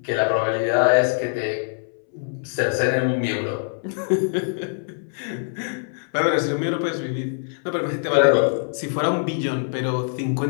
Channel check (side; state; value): right; silent; 63 dB below the other